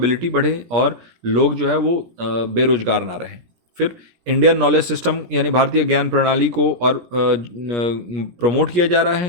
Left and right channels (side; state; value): left; late; 17 ms